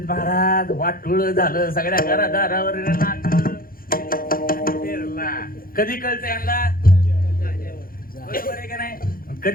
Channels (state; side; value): late; right; 0.42 ms